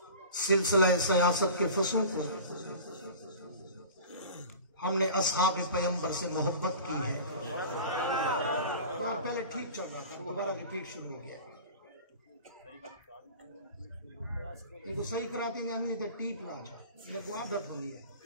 سلسلہ سیاست کے فصوں کو ہم نے اصحاب پیغمبر سے محبت کی ہے۔ پہلے ٹھیک چل رہا تھا، دوبارہ ریپیٹ شروع ہو گیا۔ لیکن صحیح کراتی نہیں تھا، ٹھیک نہ آجا لیکن عادت ہو لیا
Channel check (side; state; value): both; inverted; correlation -0.38